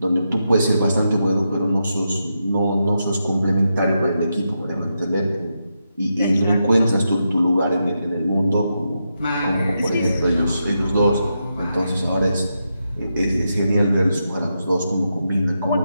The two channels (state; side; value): inverted; both; correlation -0.85